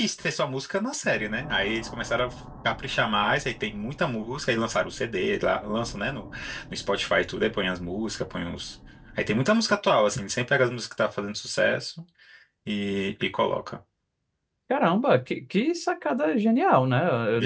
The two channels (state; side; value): identical; both; correlation 1.00